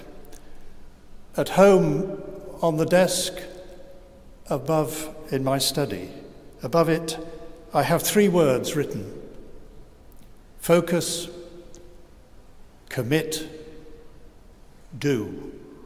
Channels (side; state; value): both; identical; correlation 1.00